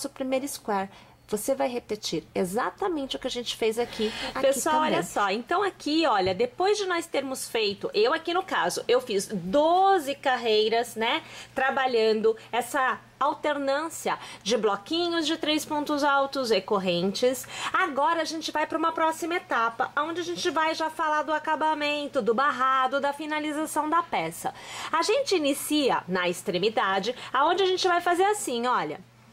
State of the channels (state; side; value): identical; both; correlation 1.00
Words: primeiro square. você vai repetir exatamente o que a gente fez aqui. Pessoal, também. olha só, então aqui, olha, depois de nós termos feito, eu aqui no caso, eu fiz 12 carreiras, né, trabalhando essa alternância de bloquinhos de 3 pontos altos e correntes. Agora a gente vai para uma próxima etapa, onde a gente vai já falar do acabamento, do barrado, da finalização da peça. A gente inicia na extremidade, aonde a gente vai fazer assim, olha.